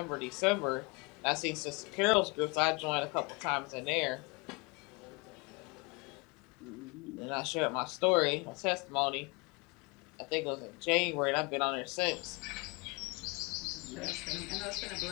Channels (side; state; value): right; quieter; 28.4 dB